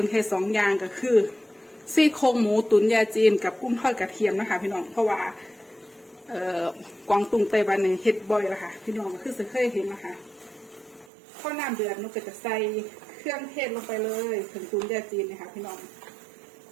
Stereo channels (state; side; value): drops out; left; at 11.1 s